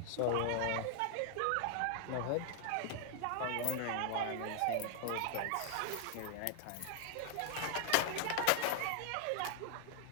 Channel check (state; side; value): different; both; correlation 0.00